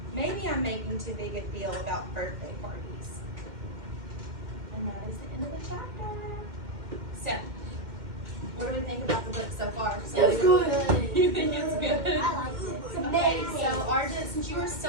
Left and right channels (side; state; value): left; late; 2.1 ms